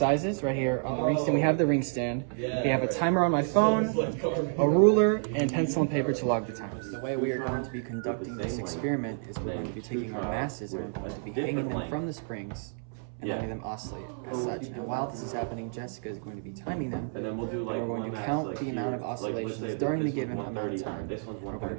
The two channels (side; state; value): left; silent; 58 dB below the other